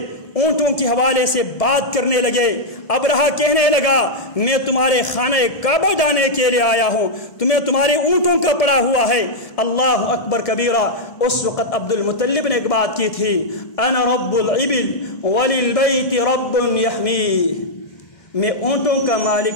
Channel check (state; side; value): late; right; 1.7 ms